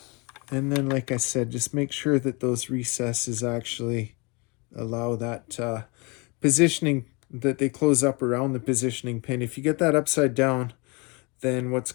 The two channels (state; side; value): quieter; right; 29.3 dB